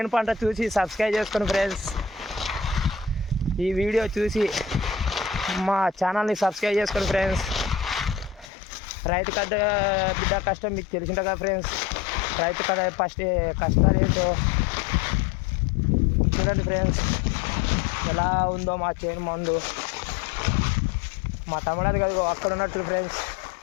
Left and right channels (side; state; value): right; drops out; at 8.5 s